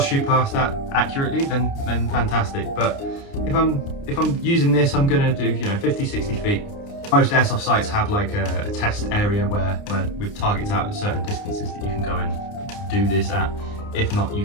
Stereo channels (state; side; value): late; right; 29 ms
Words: shoot past that accurately, then fantastic. But if I'm using this, I'm gonna do 50, 60 feet. Most airsoft sites have like a test area where with targets out at certain distances that you can go and do this at. If not,